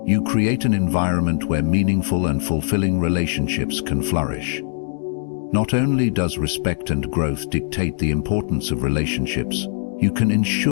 you create an environment where meaningful and fulfilling relationships can flourish. Not only does respect and growth dictate the importance of relationships, you can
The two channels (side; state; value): right; silent; digital silence